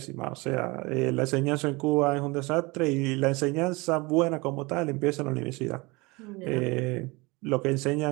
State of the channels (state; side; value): quieter; left; 25.1 dB